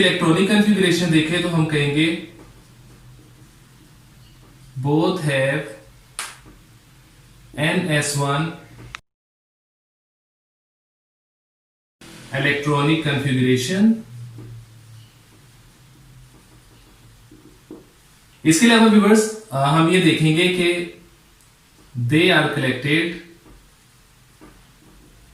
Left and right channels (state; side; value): identical; both; correlation 1.00